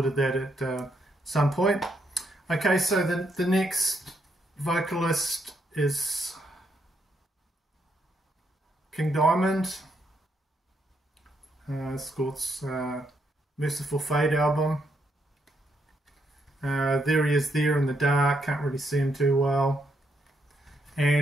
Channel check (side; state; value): both; normal; correlation 0.77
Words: that at some point. Okay, so the next vocalist is King Diamond. It's called Merciful Fate album. There he is there in the dark, can't really see him too well.